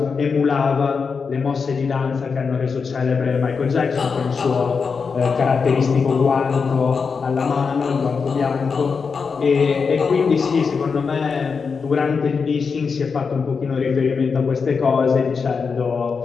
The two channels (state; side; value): quieter; right; 5.4 dB